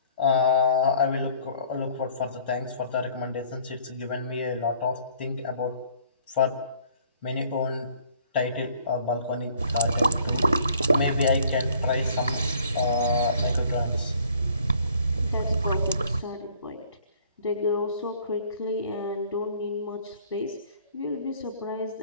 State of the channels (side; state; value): both; inverted; correlation -0.57